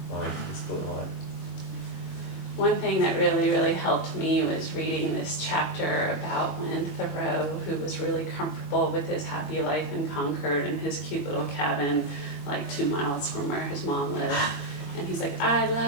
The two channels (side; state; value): right; late; 21 ms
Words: line, the split line. One thing that really, really helped me was reading this chapter about when Thoreau, who was really comfortable with his happy life in Concord and his cute little cabin 2 miles from where his mom lived. And he's like, I